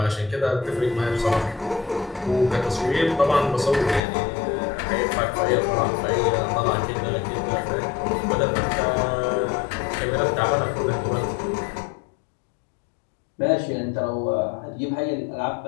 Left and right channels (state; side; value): drops out; right; at 4.0 s